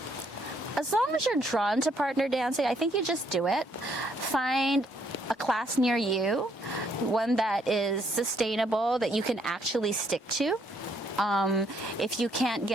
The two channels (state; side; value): normal; both; correlation 0.70